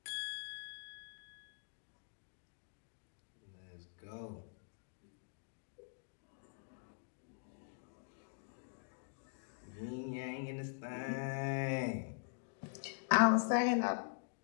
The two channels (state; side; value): silent; right; digital silence